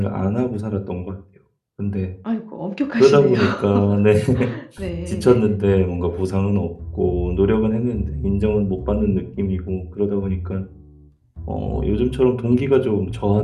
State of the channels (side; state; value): both; identical; correlation 1.00